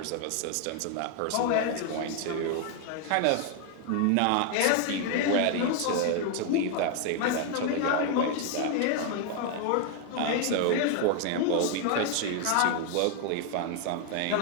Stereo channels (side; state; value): both; different; correlation 0.00